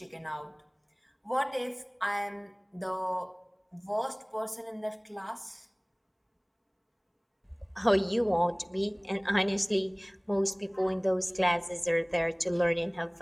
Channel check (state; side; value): identical; both; correlation 1.00